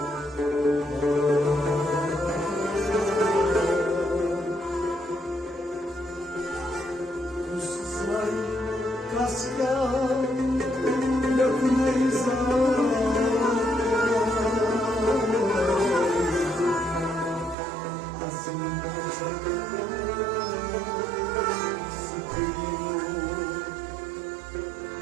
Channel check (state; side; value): drops out; left; at 17.6 s